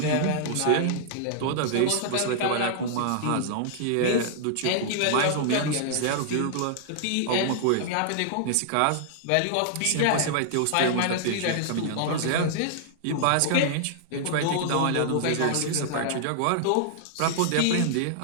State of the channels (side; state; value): both; different; correlation -0.01